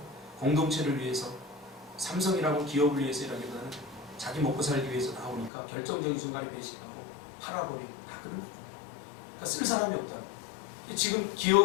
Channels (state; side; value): drops out; right; at 5.5 s